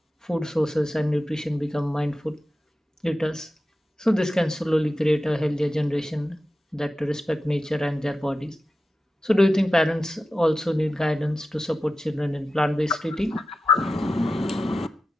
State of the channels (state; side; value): normal; both; correlation 0.93